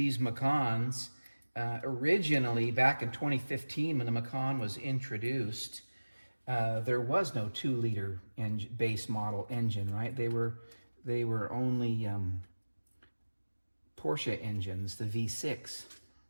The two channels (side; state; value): both; inverted; correlation -1.00